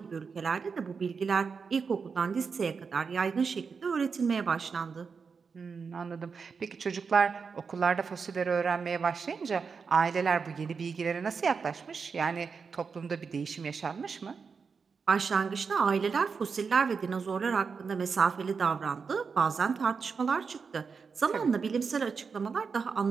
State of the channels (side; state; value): left; quieter; 5.5 dB